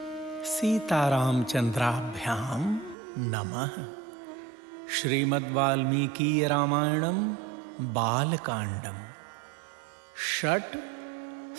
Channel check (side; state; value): left; drops out; at 3.0 s